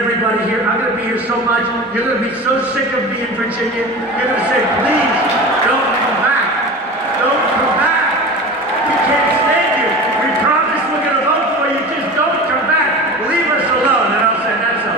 here. I'm going to be here so much, you're going to be so sick of me in Virginia. You're going to say, please, don't come back. Don't come back. We can't stand you. We promise we're going to vote for you, just don't come back. Leave us alone. And I'll say, that's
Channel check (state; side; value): normal; both; correlation 0.32